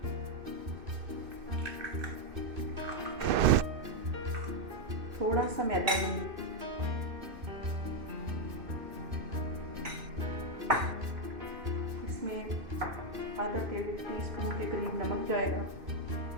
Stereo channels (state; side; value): late; left; 2.6 ms